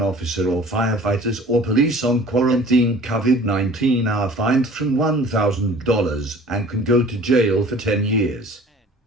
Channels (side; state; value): both; normal; correlation 0.47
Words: officer or firefighters or police on quarantine COVID-19 are fined from $1,000 and can go to jail for 10 years.